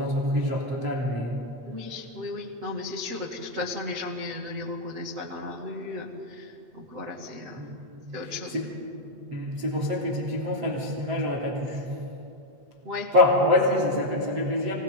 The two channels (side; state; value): left; late; 7.9 ms